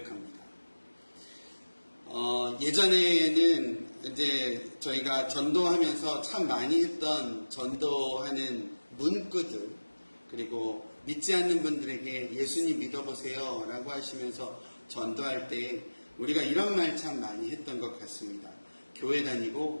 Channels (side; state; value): both; inverted; correlation -1.00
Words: 예전에는 이제 저희가 전도하면서 참 많이 했던 전도하는 문구들, 그리고 믿지 않는 분들에게 예수님 믿어보세요 라고 하시면서 전도할 때 우리가 이런 말 참 많이 했던 것 같습니다. 교회